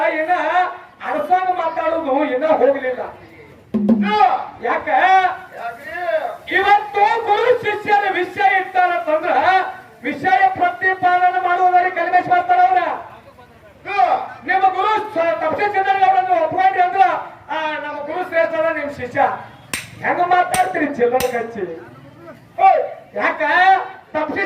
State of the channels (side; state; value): both; identical; correlation 1.00